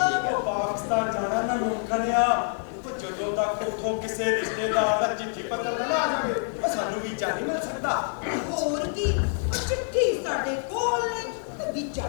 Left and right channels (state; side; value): silent; right; 57 dB below the other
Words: ਉਹ ਪਾਕਿਸਤਾਨ ਜਾਣਾ ਨਾ ਮੁਮਕਨ ਆ। ਉਹ ਜਦੋਂ ਤੱਕ ਉੱਥੋਂ ਕਿਸੇ ਰਿਸ਼ਤੇਦਾਰ ਦਾ ਚਿੱਠੀ ਪੱਤਰ ਨਾ ਆ ਜਾਵੇ, ਉਹ ਸਾਨੂੰ ਵੀਜ਼ਾ ਨਹੀਂ ਮਿਲ ਸਕਦਾ। ਹੋਰ ਕੀ, ਉਹ ਚਿੱਠੀ ਸਾਡੇ ਕੋਲ ਨੇ ਤੇ ਵੀਜ਼ਾ